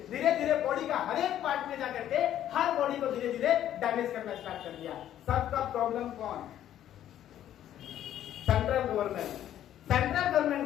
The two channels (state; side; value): quieter; right; 11.5 dB